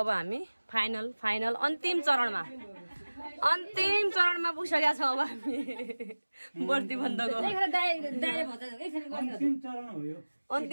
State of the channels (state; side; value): inverted; both; correlation -1.00